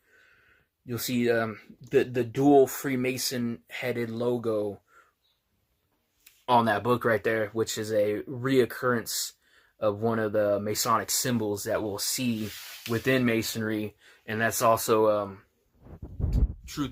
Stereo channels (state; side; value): identical; both; correlation 1.00